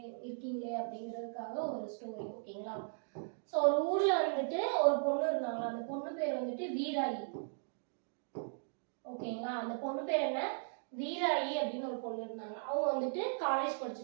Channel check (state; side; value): silent; left; digital silence